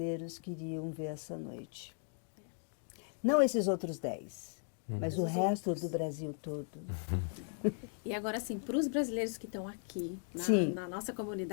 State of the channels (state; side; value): silent; right; 53 dB below the other